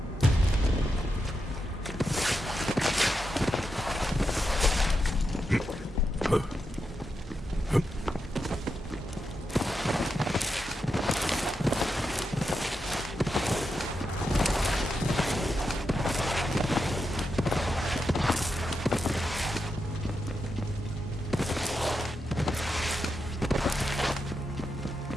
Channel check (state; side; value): normal; both; correlation 0.86